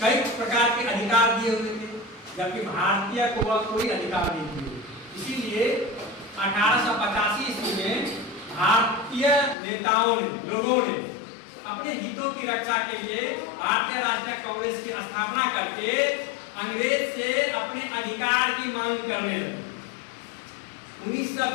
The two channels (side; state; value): right; drops out; at 9.6 s